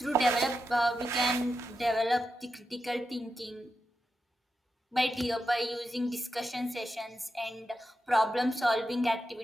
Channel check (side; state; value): both; normal; correlation 0.88